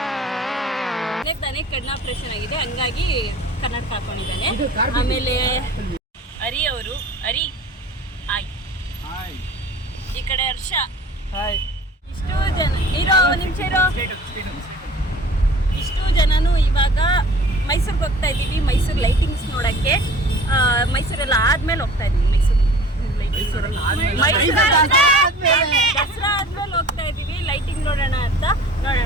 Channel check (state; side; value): normal; both; correlation 0.45